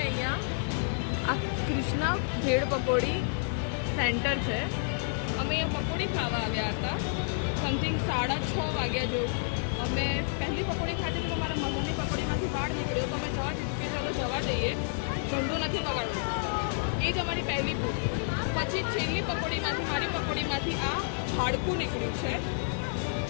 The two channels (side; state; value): right; silent; digital silence